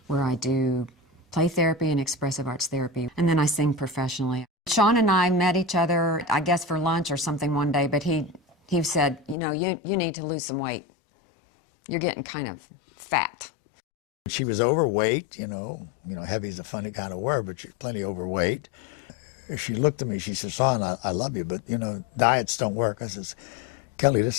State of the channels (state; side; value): drops out; right; at 9.3 s